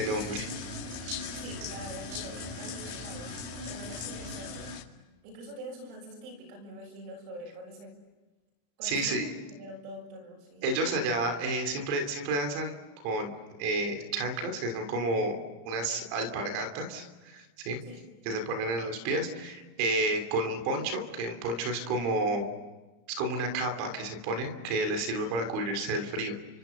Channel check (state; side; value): late; left; 34 ms